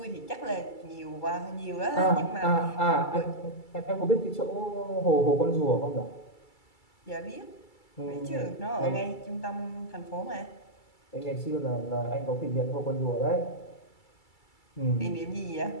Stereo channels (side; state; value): right; late; 2.3 ms